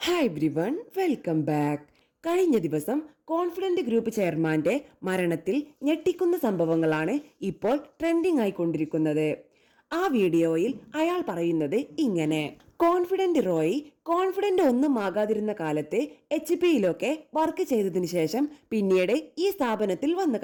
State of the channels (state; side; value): identical; both; correlation 1.00